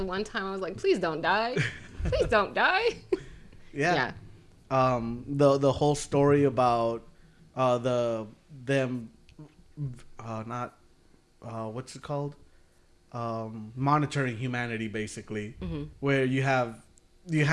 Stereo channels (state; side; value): identical; both; correlation 1.00